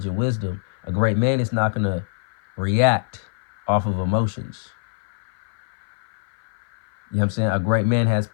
and wisdom. A great man is not going to react off of emotions. You know what I'm saying? A great man has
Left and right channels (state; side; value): silent; right; 56 dB below the other